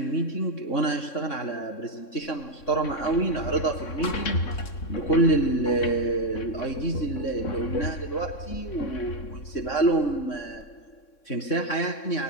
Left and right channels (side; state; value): right; late; 3.6 ms